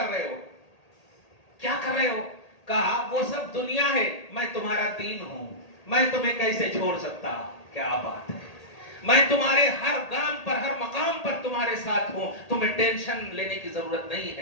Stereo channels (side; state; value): right; late; 1.8 ms